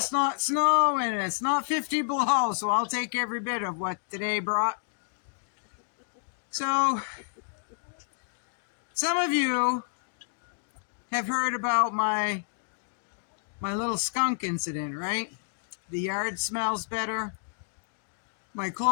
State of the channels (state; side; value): silent; right; digital silence